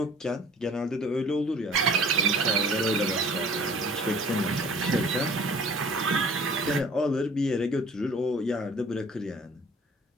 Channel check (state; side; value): normal; both; correlation 0.49